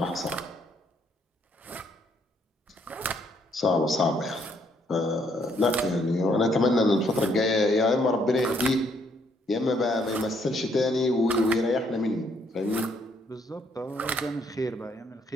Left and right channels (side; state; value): both; normal; correlation 0.69